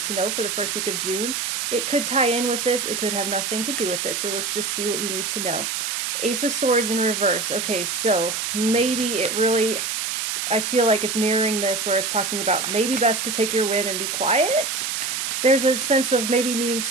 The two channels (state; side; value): noise; right; hiss, 2 dB below the sound